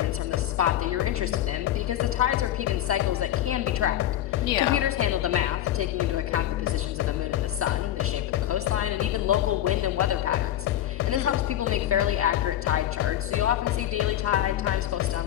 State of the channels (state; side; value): quieter; right; 12.3 dB